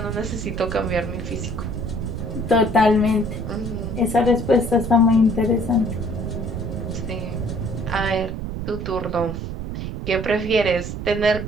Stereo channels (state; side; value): noise; right; rumble, 5 dB below the sound